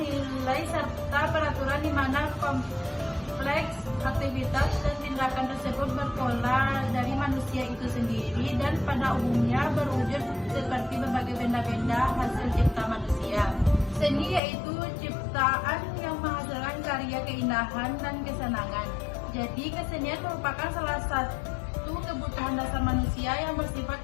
serta peraturan di mana kompleks aktivitas dan tindakan tersebut berpola dari manusia itu sendiri dan pada umumnya berwujud seperti berbagai benda-benda hasil cipta manusia. Seni yaitu ciptaan yang menghasilkan karya keindahan dan kesenangan. Jadi kesenian merupakan salah satu kebutuhan dasar manusia yang bersifat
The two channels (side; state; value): right; drops out; at 14.4 s